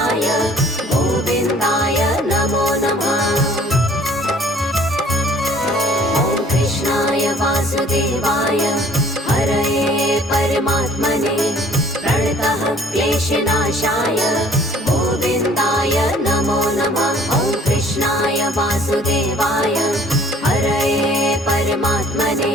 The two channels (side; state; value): both; normal; correlation 0.55